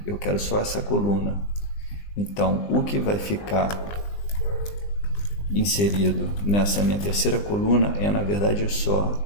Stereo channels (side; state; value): right; late; 20 ms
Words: eu quero só essa coluna. Então o que vai ficar inserido nessa minha terceira coluna é, na verdade,